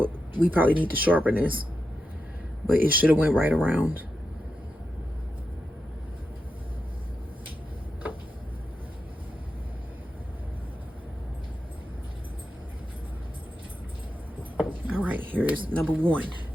we probably need to sharpen this, but it should have went right around. All right, here is number one.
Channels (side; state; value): both; normal; correlation 0.88